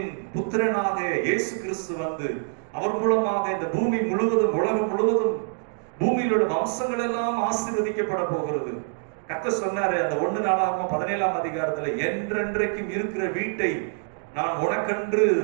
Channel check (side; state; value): left; silent; digital silence